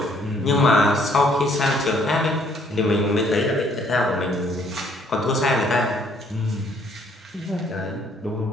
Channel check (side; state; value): both; normal; correlation 0.64